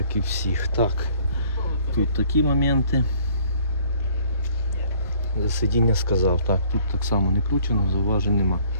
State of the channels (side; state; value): both; inverted; correlation -0.58